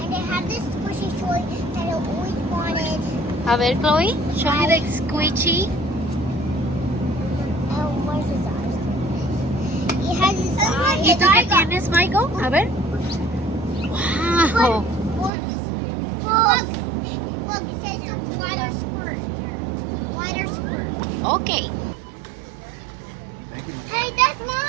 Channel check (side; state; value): left; drops out; at 15.3 s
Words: and they have this squishy toy that I always wanted. A ver, Chloe, show me the squishy. Where's his eyes? He has his eyes. ¿Y tú qué tienes, Michael? A ver. Wow. Look, it says the water squirt. Water squirt. Okay. Hey, that's